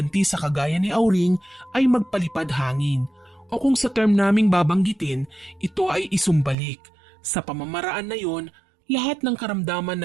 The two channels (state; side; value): drops out; left; at 6.6 s